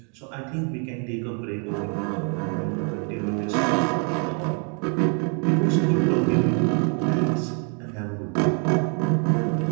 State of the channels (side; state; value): left; quieter; 38.7 dB